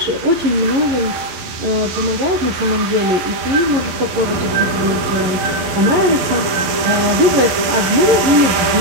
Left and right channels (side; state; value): left; late; 12 ms